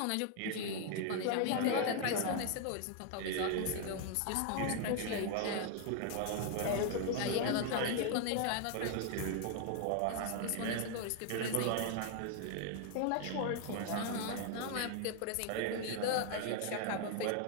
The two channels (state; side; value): different; both; correlation 0.00